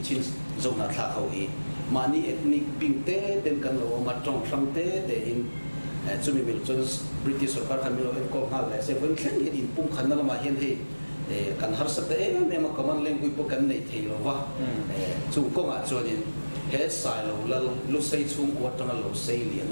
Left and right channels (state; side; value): inverted; both; correlation -1.00